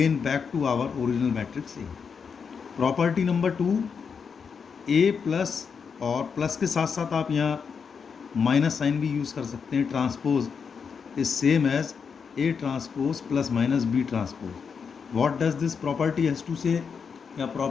back to our original matrix A. Property number 2, A plus, और प्लस के साथ साथ आप यहाँ माइनस साइन भी यूज़ कर सकते हैं। Transpose is same as A transpose plus minus B transpose. What does this property has to say? या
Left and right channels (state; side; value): quieter; right; 6.1 dB